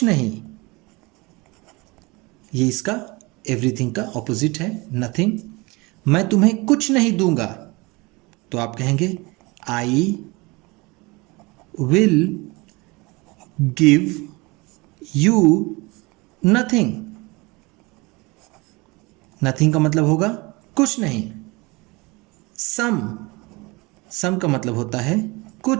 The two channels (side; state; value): left; quieter; 25.0 dB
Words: नहीं, ये इसका एवरीथिंग का ऑपोजिट है, नथिंग। मैं तुम्हें कुछ नहीं दूंगा, तो आप कहेंगे आई will give you nothing। nothing का मतलब होगा कुछ नहीं। some का मतलब होता है